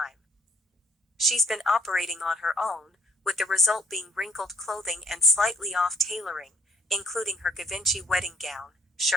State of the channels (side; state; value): both; normal; correlation 0.62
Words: She's been operating on her own, with the result being wrinkled clothing and slightly off tailoring, including her Givenchy wedding gown,